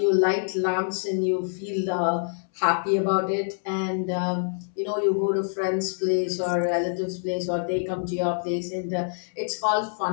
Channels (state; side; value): silent; right; 61 dB below the other